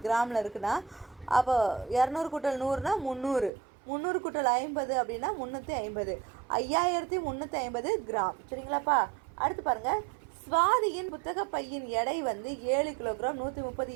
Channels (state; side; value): drops out; left; at 3.5 s